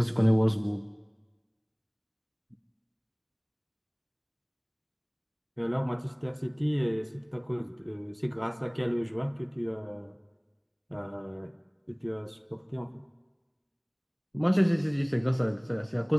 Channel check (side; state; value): both; identical; correlation 1.00